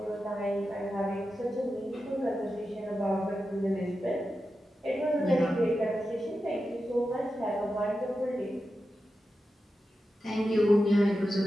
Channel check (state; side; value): normal; both; correlation 0.91